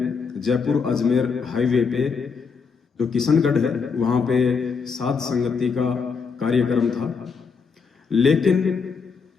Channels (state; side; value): quieter; right; 5.4 dB